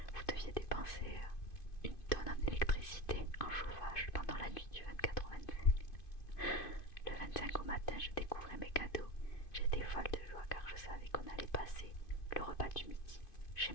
Vous deviez dépenser une tonne en électricité, en chauffage pendant la nuit du 24 au 25. Le 25 au matin, je découvrais mes cadeaux. J'étais folle de joie car je savais qu'on allait passer le repas du midi chez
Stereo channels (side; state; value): right; late; 2.5 ms